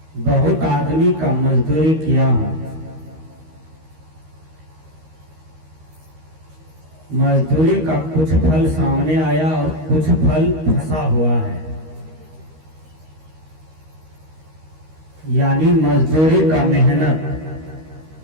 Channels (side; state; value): left; late; 13 ms